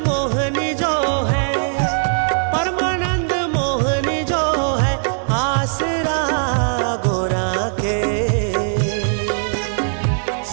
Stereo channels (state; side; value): silent; left; 60 dB below the other